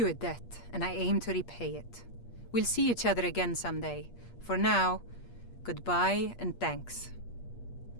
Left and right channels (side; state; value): right; late; 8.5 ms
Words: a debt, and I aim to repay it. We'll see each other again someday. For now, goodbye and thanks.